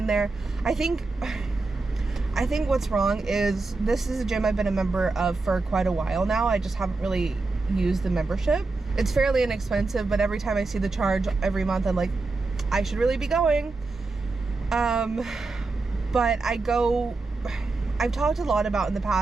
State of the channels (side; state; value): left; quieter; 3.6 dB